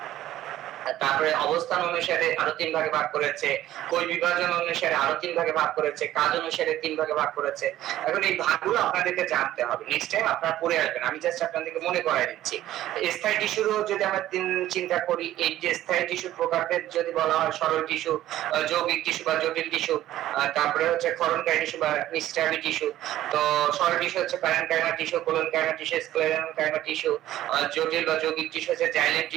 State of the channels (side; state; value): left; quieter; 13.8 dB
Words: তারপরে অবস্থান অনুসারে আরো 3 ভাগে ভাগ করেছে, কোষ বিভাজন অনুসারে আরো 3 ভাগে ভাগ করেছে, কাজ অনুসারে 3 ভাগে ভাগ করেছে। এখন এই ভাগগুলো আপনাদেরকে জানতে হবে, নেক্সট টাইম আপনারা পড়ে আসবেন, আমি জাস্ট আপনাদেরকে মনে করাই দিচ্ছি। স্থায়ী টিস্যুরও যদি আমরা চিন্তা করি, এই যে স্থায়ী টিস্যুর প্রকারভেদ যদি বলা হয়, সরল টিস্যু, যৌগিক টিস্যু বা জটিল টিস্যু, তারপরে হচ্ছে ক্ষরণকারী টিস্যু বা নিস্টাবি টিস্যু। তো সরল টিস্যু হচ্ছে parenchyma tissue, collenchyma tissue, sclerenchyma tissue. জটিল বা যৌগিক টিস্যু হচ্ছে জাইলেম